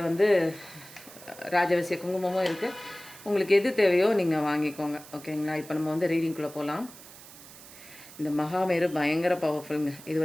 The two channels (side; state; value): right; noise; hiss, 18 dB below the sound